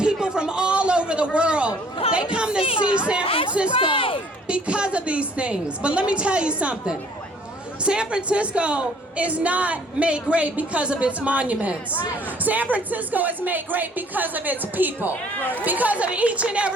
from all over the world, they come to see San Francisco because of these things. But let me tell you something. San Francisco is not made great because of its monuments. San Francisco is made great because of its people. Because of each and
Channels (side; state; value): both; normal; correlation 0.57